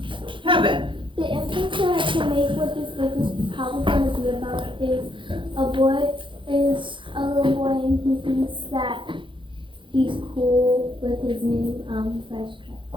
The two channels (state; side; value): late; left; 0.24 ms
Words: Heaven. The inference that I can make what this book is probably going to be about is a little boy and he thinks that he's cool with his new fresh